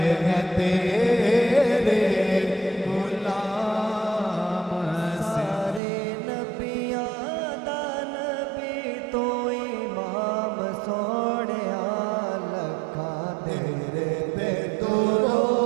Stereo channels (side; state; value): left; drops out; at 5.8 s